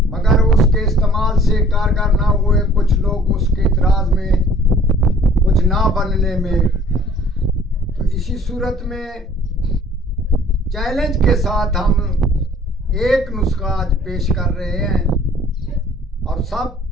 मगर उसके इस्तेमाल से कारगर ना हुए। कुछ लोग उसके इतराज में, कुछ ना बनने में। तो इसी सूरत में चैलेंज के साथ हम एक नुस्खा आज पेश कर रहे हैं और सब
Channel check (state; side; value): normal; both; correlation 0.53